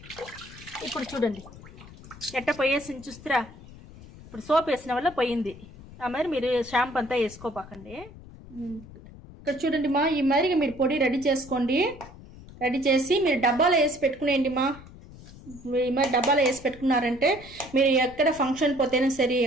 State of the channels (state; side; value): noise; left; rumble, 18 dB below the sound